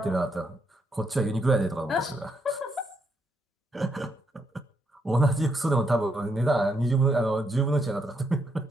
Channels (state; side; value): normal; both; correlation 0.77